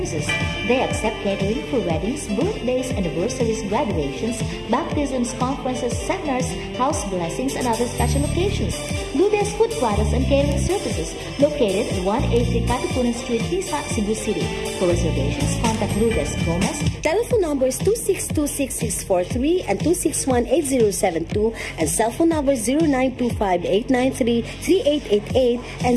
They accept catering for weddings, birthdays, anniversaries, graduations, baptisms, conferences, seminars, house blessings, and other special occasions. Lourdes Food Products and Catering Services, located at 183 Katipunan Street, Pisa, Cebu City. For reservations, contact Lourdes Gomez. Telephone numbers 2626643 and 2618072 and cell phone numbers 0925-893-3888 and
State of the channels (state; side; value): identical; both; correlation 1.00